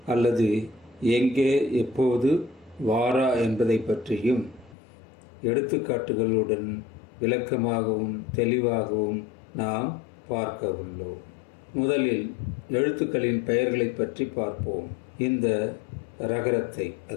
அல்லது எங்கே எப்போது வாரா என்பதை பற்றியும் எடுத்துக்காட்டுகளுடன் விளக்கமாகவும் தெளிவாகவும் நாம் பார்க்க உள்ளோம். முதலில் எழுத்துக்களின் பெயர்களை பற்றி பார்ப்போம். இந்த ரகரத்தை,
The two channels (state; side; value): drops out; right; at 4.8 s